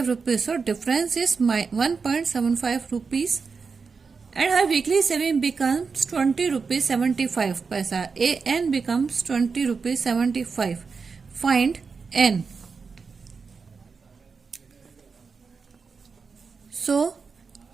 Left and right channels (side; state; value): left; quieter; 5.1 dB